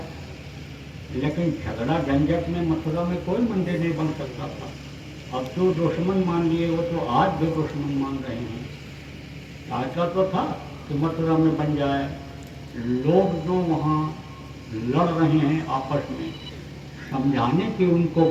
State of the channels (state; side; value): identical; both; correlation 1.00